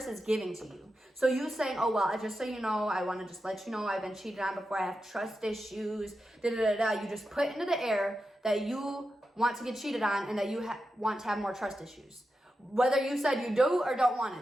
is giving to you. So you saying, oh, well, just so you know, I want to just let you know I've been cheated on before, I have trust issues, you just put into the air that you want to get cheated on and that you want to have more trust issues. Whether you said you do or don't want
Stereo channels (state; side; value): normal; both; correlation 0.89